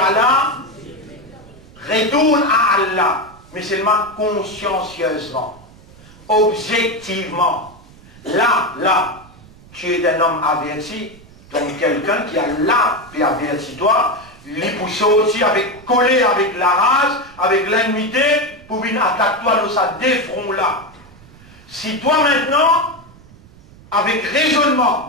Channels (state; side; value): noise; right; rumble, 23 dB below the sound